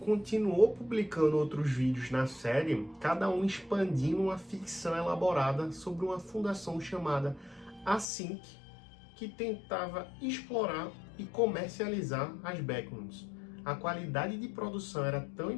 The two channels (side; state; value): right; drops out; at 8.1 s